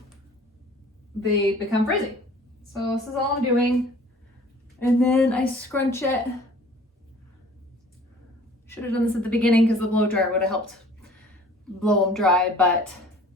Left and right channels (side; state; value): both; normal; correlation 0.50